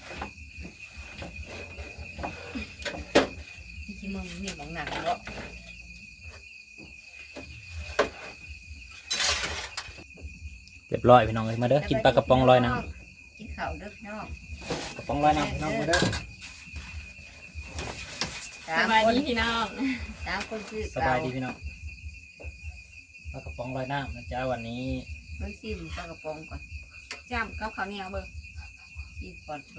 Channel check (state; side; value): identical; both; correlation 1.00